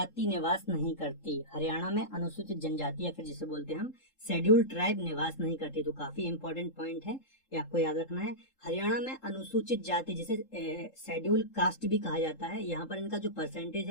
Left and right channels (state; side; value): late; right; 3.7 ms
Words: निवास नहीं करती। हरियाणा में अनुसूचित जनजाति या फिर जिसे बोलते हैं हम शेड्यूल्ड ट्राइब निवास नहीं करती। तो काफी इंपॉर्टेंट पॉइंट है, ये आपको याद रखना है। हरियाणा में अनुसूचित जाति जिसे शेड्यूल्ड कास्ट भी कहा जाता है, यहाँ पर इनका जो परसेंटेज